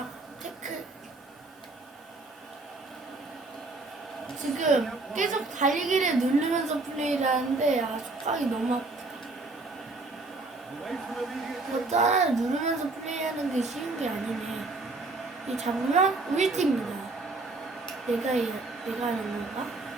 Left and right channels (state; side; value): quieter; left; 3.3 dB